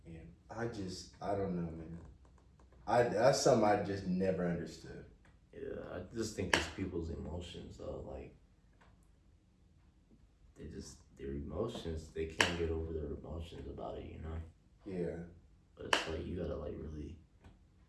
them. And I don't know, man. That's something I just never understood. Yeah, I just think it's people's emotions though. Like their emotions, they can't get over their emotions about it, Yeah. But it's like you gotta like really,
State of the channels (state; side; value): identical; both; correlation 1.00